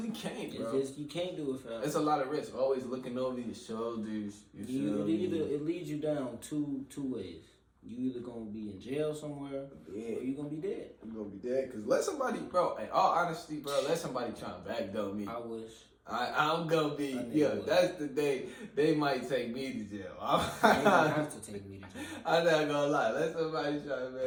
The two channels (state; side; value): identical; both; correlation 1.00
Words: can't, bro. You can't do it forever. It's a lot of risk. Always looking over your shoulders. It leads you down two ways. You either gonna be in jail somewhere, or you gonna be dead. I'm gonna be dead. Cause let somebody, bro. In all honesty, bro, let somebody try and backdoor me. I wish. I'm gonna be. Yeah, that's the day they might take me to jail. They don't have to take me to jail. I'm not gonna lie. Let somebody try and